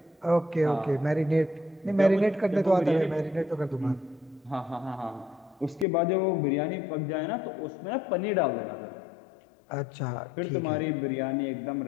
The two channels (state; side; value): drops out; right; at 5.9 s